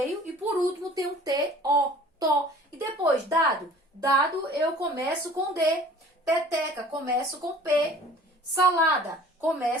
e por último tem um T-O, to. E depois, dado. Dado eu começo com D. Peteca, começo com P. Salada,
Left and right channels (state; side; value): normal; both; correlation 0.48